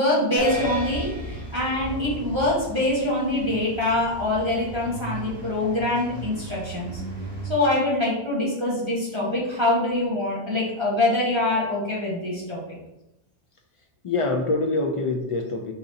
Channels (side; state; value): left; late; 1.3 ms